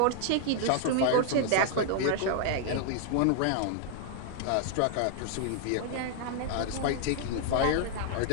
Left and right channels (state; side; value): different; both; correlation 0.00